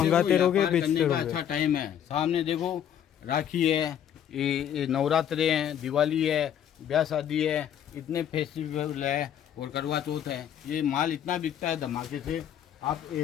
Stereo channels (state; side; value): quieter; right; 9.7 dB